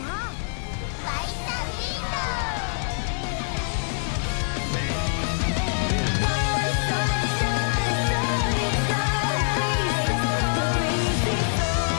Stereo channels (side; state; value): right; silent; digital silence